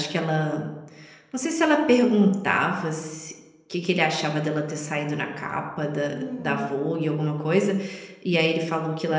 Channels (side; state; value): both; identical; correlation 1.00